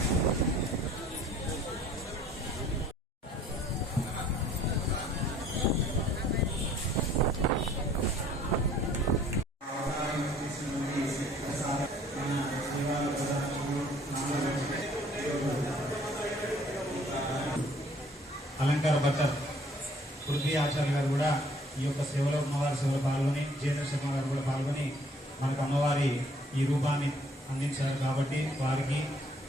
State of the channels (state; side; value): normal; both; correlation 0.58